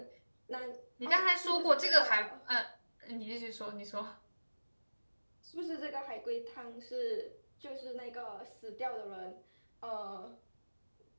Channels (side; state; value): both; inverted; correlation -1.00